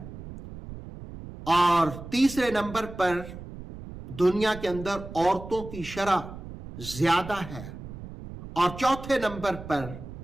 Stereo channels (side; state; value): right; noise; rumble, 12 dB below the sound